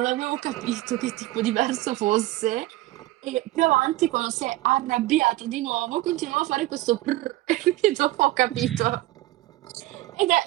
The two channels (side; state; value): left; quieter; 17.3 dB